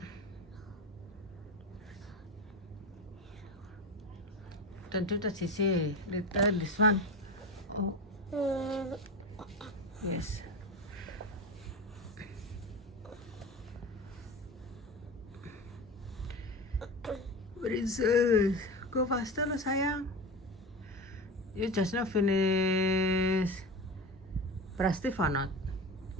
Don't do that, Sissy. This one. Oh, yes. Princess, go faster lah sayang. You just now finish Prastif or not?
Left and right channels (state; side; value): normal; both; correlation 0.26